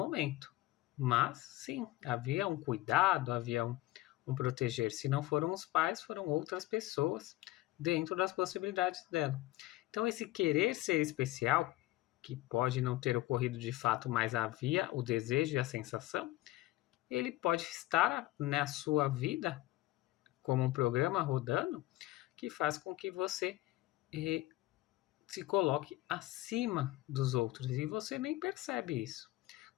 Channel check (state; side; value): quieter; right; 17.8 dB